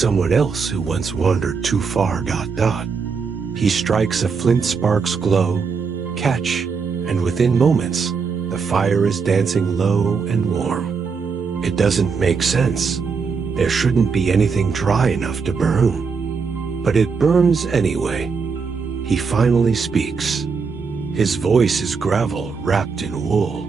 else who once wandered too far. He strikes a flint spark's glow, catch, and within moments, the fire is dancing low and warm. It doesn't make sense. There shouldn't be anything dry enough to burn. But it burns anyway. He finally speaks. His voice is gravel wrapped in wool.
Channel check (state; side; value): quieter; left; 5.4 dB